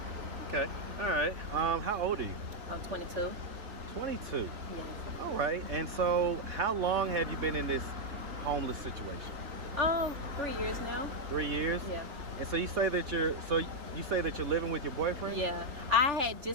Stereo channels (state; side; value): late; left; 3.4 ms